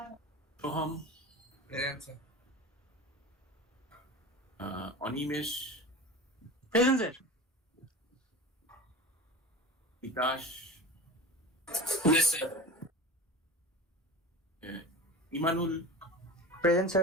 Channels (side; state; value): both; normal; correlation 0.33